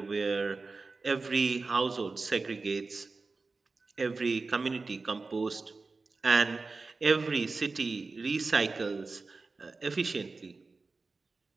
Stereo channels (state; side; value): quieter; left; 3.9 dB